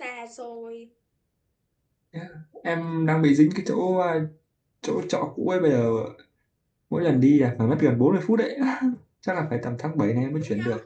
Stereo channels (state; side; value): identical; both; correlation 1.00